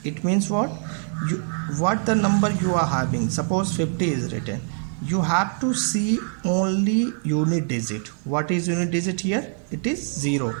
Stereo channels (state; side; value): silent; left; 59 dB below the other